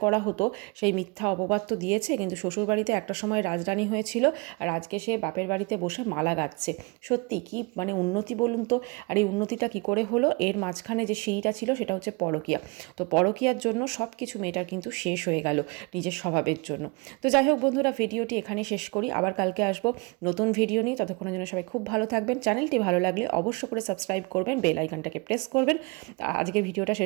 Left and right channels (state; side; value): quieter; left; 29.3 dB